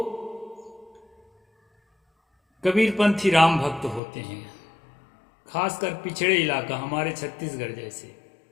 कबीरपंथी राम भक्त होते हैं, खासकर पिछड़े इलाका हमारे छत्तीसगढ़ जैसे।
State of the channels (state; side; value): drops out; right; at 4.0 s